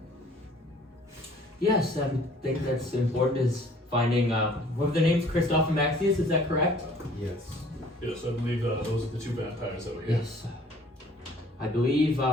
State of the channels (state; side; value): normal; both; correlation 0.54